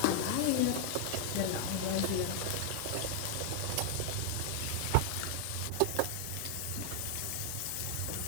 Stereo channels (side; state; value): both; different; correlation 0.00